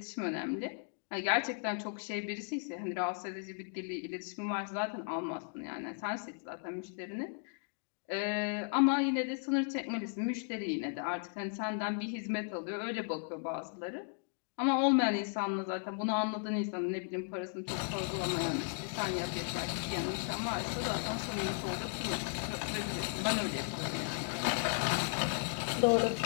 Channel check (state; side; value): silent; right; 54 dB below the other